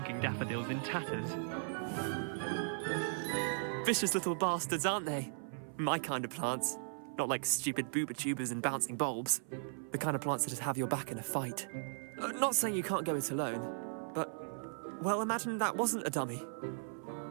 daffodils in tatters. Vicious little bastards, aren't they? My kind of plants. Not like stupid booba tubers and bouncing bulbs. The kind of plants that have your back in a fight. Not saying you can't go it alone, but, well, imagine that wasn't a dummy.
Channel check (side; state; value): left; silent; 53 dB below the other